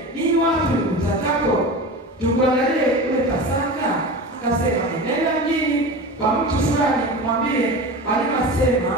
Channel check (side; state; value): both; normal; correlation 0.30